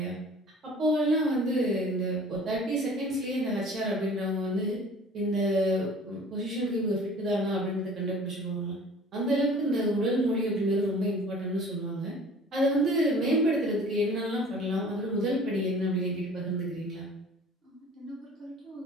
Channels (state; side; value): normal; both; correlation 0.47